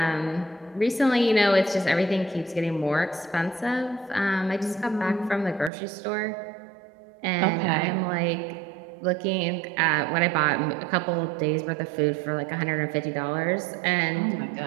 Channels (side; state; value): left; drops out; at 5.7 s